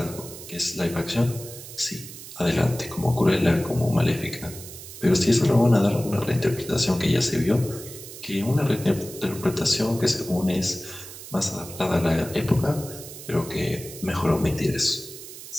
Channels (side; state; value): right; noise; hiss, 14 dB below the sound